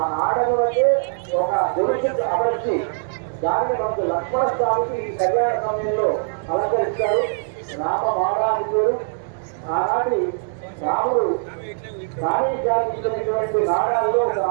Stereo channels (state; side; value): silent; left; digital silence